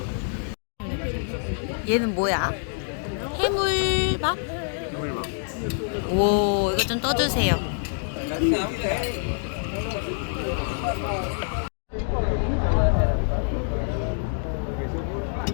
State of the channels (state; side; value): silent; right; 61 dB below the other